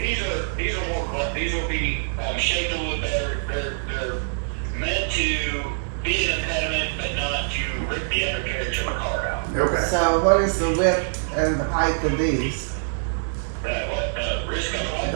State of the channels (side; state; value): left; silent; digital silence